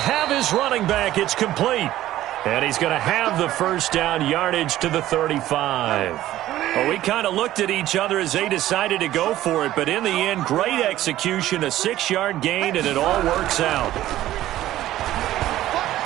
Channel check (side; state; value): left; quieter; 14.2 dB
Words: his running back. It's complete. And he's going to have the first down yardage to the 35. Well, we kind of looked at each other as they decided to go for it. But in the end, great execution, a 6-yard gain, and it all works out.